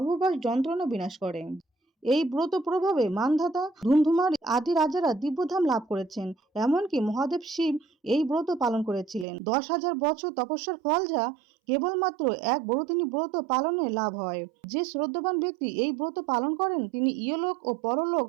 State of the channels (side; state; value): left; drops out; at 9.2 s